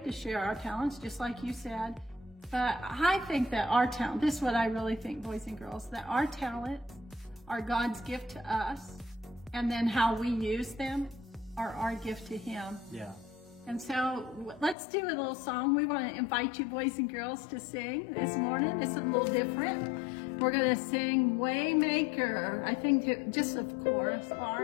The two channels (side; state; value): right; drops out; at 14.8 s